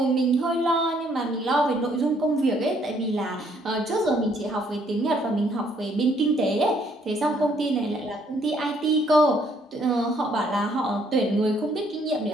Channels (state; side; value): normal; both; correlation 0.66